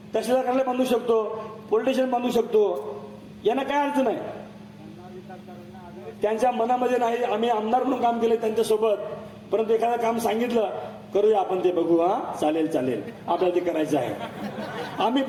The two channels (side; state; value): both; identical; correlation 1.00